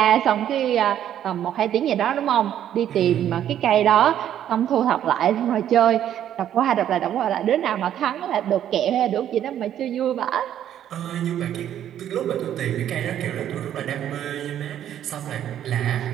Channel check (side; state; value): left; quieter; 10.7 dB